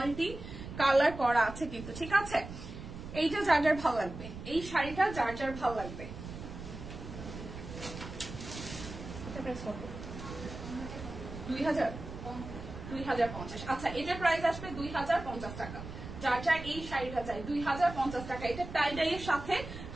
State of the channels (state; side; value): noise; right; rumble, 11 dB below the sound